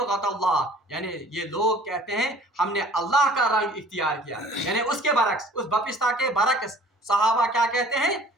اللہ یعنی یہ لوگ کہتے ہیں ہم نے اللہ کا رنگ اختیار کیا یعنی اس کے برعکس اس بپشتا کے برعکس صحابہ کیا کہتے ہیں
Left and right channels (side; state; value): both; normal; correlation 0.50